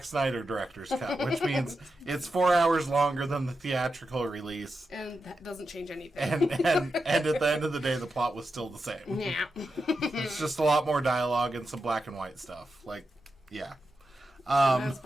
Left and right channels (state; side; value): normal; both; correlation 0.88